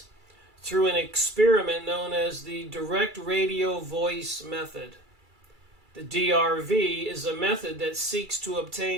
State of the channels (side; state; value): left; late; 2.3 ms